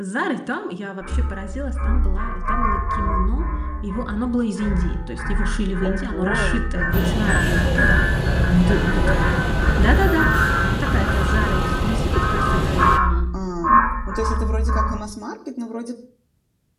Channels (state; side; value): identical; both; correlation 1.00